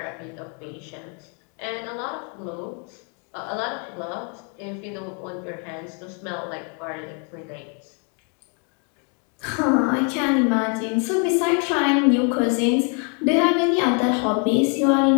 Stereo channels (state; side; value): quieter; right; 38.4 dB